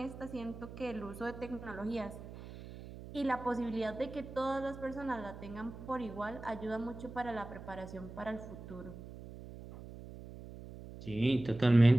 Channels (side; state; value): right; noise; hum, 13 dB below the sound